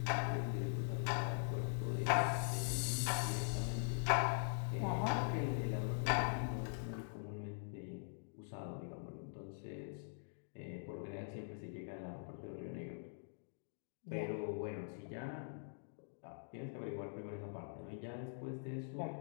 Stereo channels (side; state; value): right; silent; digital silence